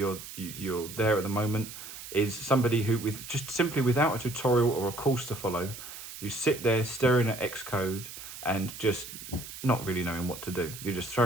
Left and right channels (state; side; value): noise; right; hiss, 12 dB below the sound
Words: there at the moment, is somebody who with just simply without a tutorial or a course to follow, you sit there staring at Xcode and just not really knowing what to do. You're just